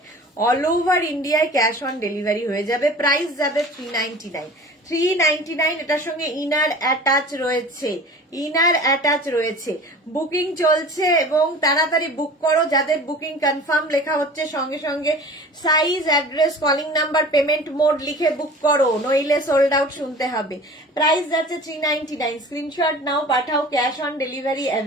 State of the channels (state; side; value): normal; both; correlation 0.41